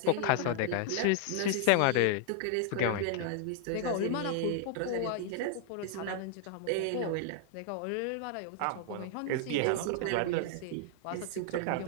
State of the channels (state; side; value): different; both; correlation 0.00